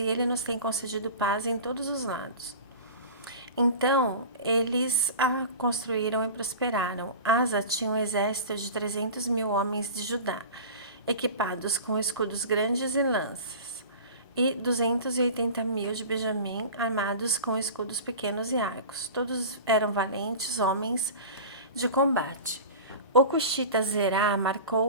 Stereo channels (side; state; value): both; inverted; correlation -0.35